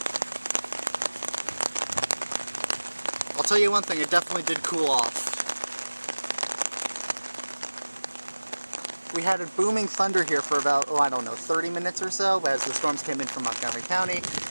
I'll tell you one thing, it definitely did cool off. We had a booming thunder here for about, 30 minutes or so as the storms came in from Montgomery County.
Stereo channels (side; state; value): both; inverted; correlation -1.00